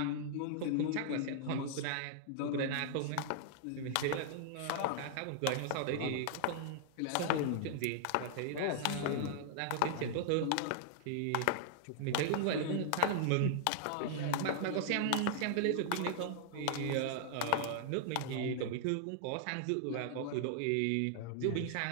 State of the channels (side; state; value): both; different; correlation -0.01